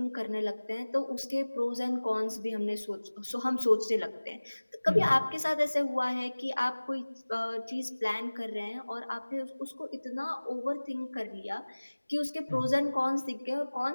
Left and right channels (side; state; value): both; inverted; correlation -1.00